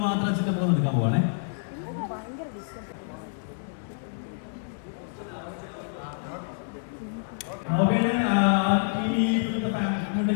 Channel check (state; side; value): silent; right; digital silence